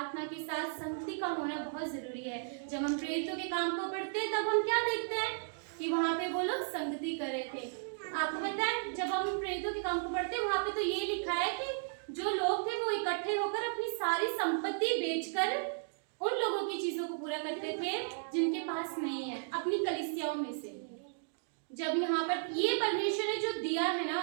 के साथ संगति का होना बहुत जरूरी है। जब हम प्रेरितों के काम को पढ़ते हैं तब हम क्या देखते हैं कि वहां पे वो लोग संगति कर रहे थे। आपको पता है, जब हम प्रेरितों के काम को पढ़ते हैं वहां पे तो ये लिखा है कि जो लोग थे वो इकट्ठे होकर अपनी सारी संपत्ति बेचकर उन लोगों की चीजों को पूरा करते थे जिनके पास नहीं है, अपनी कलीसियाओं में से। जब यहाँ पर ये परमेश्वर ने जो दिया है ना,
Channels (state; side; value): silent; left; digital silence